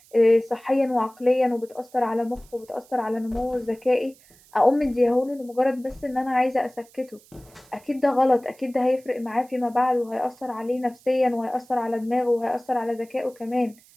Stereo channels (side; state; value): right; noise; hiss, 27 dB below the sound